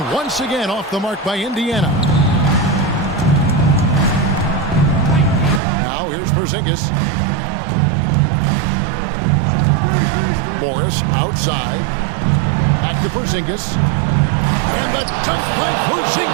once again off the mark by Indiana. Now here's Porzingis. Morris outside. Back to Porzingis. And the dunk by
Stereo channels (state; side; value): drops out; left; at 5.6 s